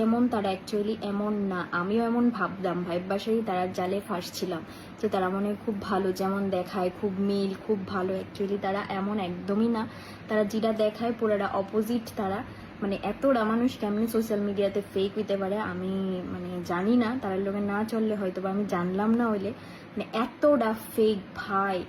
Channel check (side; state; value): both; identical; correlation 1.00